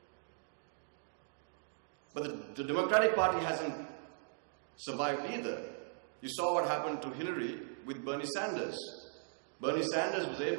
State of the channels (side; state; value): left; silent; digital silence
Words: But the Democratic Party hasn't survived either. You saw what happened to Hillary with Bernie Sanders. Bernie Sanders was